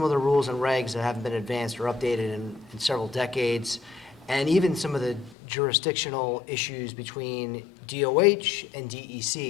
of the rules and regs that haven't been advanced or updated in several decades, and even some of the jurisdictional issues between DOH and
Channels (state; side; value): drops out; right; at 5.4 s